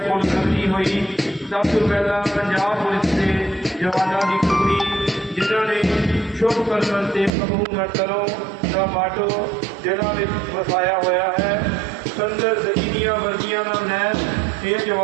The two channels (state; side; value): drops out; left; at 7.3 s